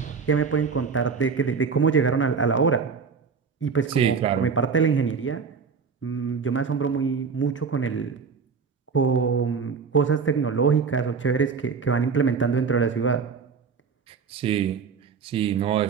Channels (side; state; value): left; quieter; 5.7 dB